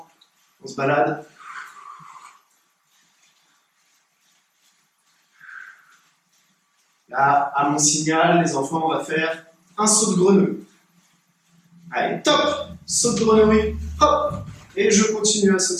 on se balade. Là, à mon signal, les enfants, on va faire un saut de grenouille. Allez, top! Saut de grenouille, hop! Et je continue à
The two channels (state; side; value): identical; both; correlation 1.00